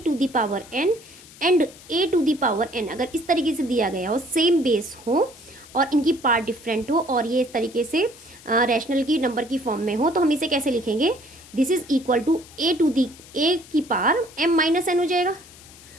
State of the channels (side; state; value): left; noise; hiss, 21 dB below the sound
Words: एंड a⁴n अगर इस तरीके से दिया गया हो, सेम बेस हो और इनकी पार्ट डिफरेंट हो और ये इस तरीके से रैशनल की नंबर की फॉर्म में हो, तो हम इसे कैसे लिखेंगे, this is equal to a की पावर m-n हो जाएगा,